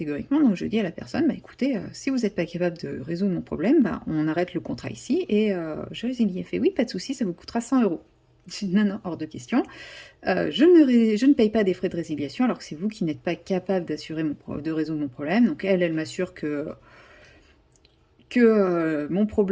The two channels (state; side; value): identical; both; correlation 1.00